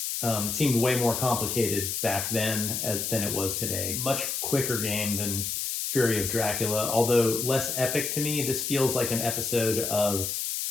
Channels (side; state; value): left; noise; hiss, 2 dB below the sound